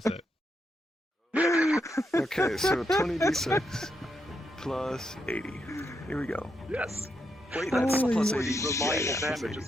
it. Okay, so 20d6 plus 80. Here we go. Yes. Wait, that's Holy plus 80 shit. reliable Yeah, plus damage 80.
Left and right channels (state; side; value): normal; both; correlation 0.81